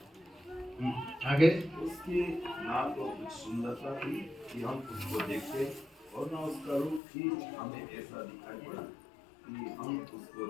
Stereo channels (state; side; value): drops out; right; at 7.0 s